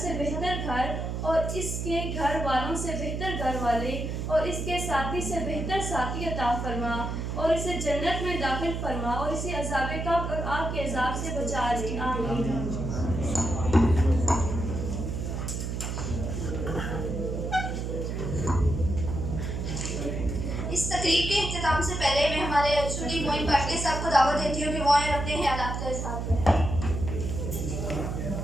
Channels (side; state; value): right; noise; hum, 3 dB below the sound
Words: से बेहतर घर और इसके घर वालों से बेहतर घर वाले और इसके साथी से बेहतर साथी अता फरमा और इसे जन्नत में दाखिल फरमा और इसे अज़ाब कब्र और आग के अज़ाब से बचा ले। आमीन। इस तकरीब के इख्तिताम से पहले मैं हमारे स्टूडेंट मोइन पाटले साहब को दावत देती हूँ कि वो आए अपने ख्यालात का इज़हार करें।